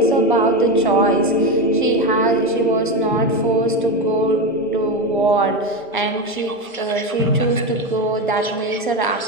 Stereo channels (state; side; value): normal; both; correlation 0.16